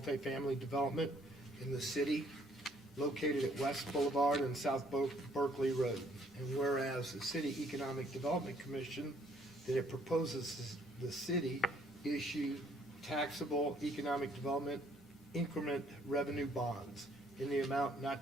development in the city located at West Boulevard and South Berkeley Road. And whereas the City Economic Development Commission, that it proposes the city issue taxable economic development increment revenue bonds in the amount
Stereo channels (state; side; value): normal; both; correlation 0.64